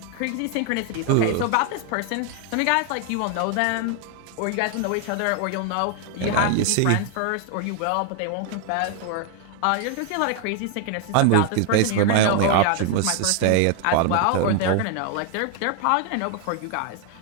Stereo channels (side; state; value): both; different; correlation 0.00